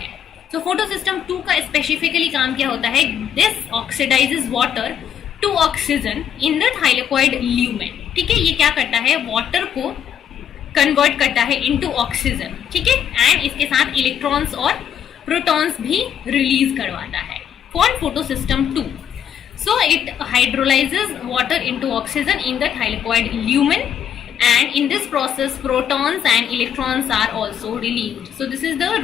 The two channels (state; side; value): quieter; right; 9.0 dB